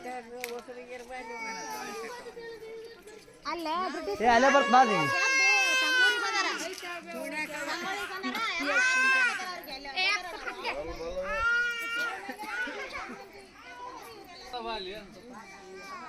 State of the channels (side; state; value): both; identical; correlation 1.00